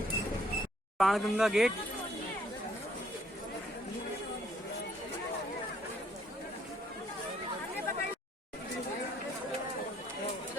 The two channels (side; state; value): both; normal; correlation 0.65